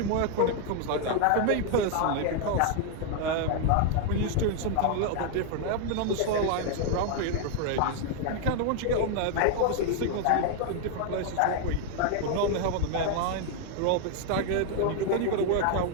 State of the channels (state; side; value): different; both; correlation 0.00